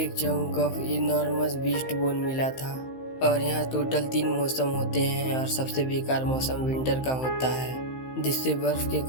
chunk of enormous beast bone मिला था। और यहाँ टोटल 3 मौसम होते हैं और सबसे बेकार मौसम विंटर का होता है, जिससे बर्फ के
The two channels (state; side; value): late; right; 15 ms